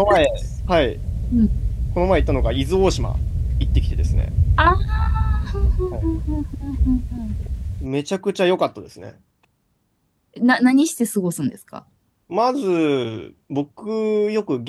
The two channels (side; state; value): both; identical; correlation 1.00